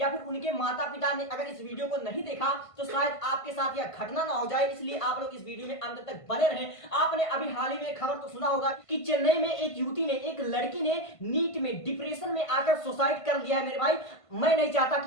फिर उनके माता पिता ने अगर इस वीडियो को नहीं देखा तो शायद आपके साथ यह घटना ना हो जाए, इसलिए आप लोग इस वीडियो में अंत तक बने रहें। आपने अभी हाल ही में खबर तो सुना होगा कि चेन्नई में एक युवती ने, एक लड़की ने नीट में डिप्रेशन में आकर सुसाइड कर लिया है। मेरे भाई मैं नहीं चाहता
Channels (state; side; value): late; right; 1.5 ms